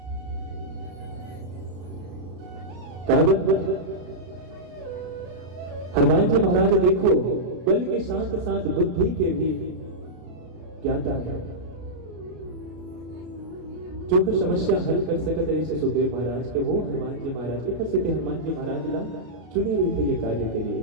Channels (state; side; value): late; left; 33 ms